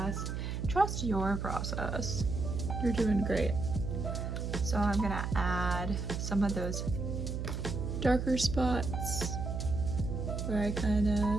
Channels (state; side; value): noise; right; hum, 3 dB below the sound